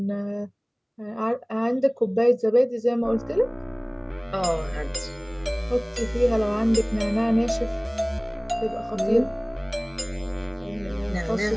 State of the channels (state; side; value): identical; both; correlation 1.00